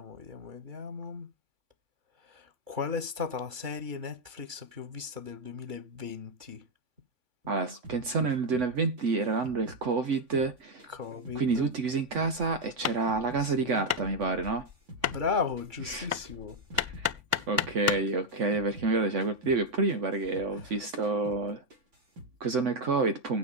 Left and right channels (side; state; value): left; late; 3.5 ms